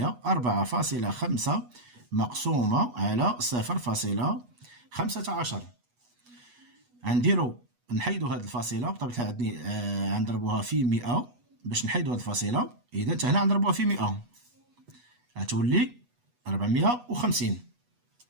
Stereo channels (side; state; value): left; late; 8.2 ms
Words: 4.5 مقسومه على 0.15. غنديرو نحيدو هاد الفاصله بطبيعه الحال، غنضربوها في 100 باش نحيدو هاد الفاصله. اذا حتى هنا غنضربوها في 100 غتولي 450،